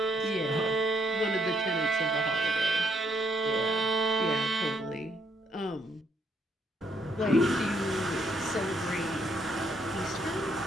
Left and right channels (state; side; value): normal; both; correlation 0.72